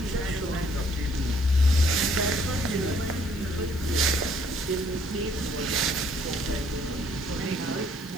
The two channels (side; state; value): left; noise; hiss, 21 dB below the sound